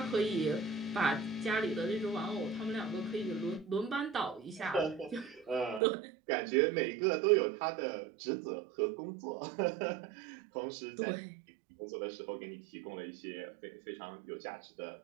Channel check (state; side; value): drops out; left; at 5.8 s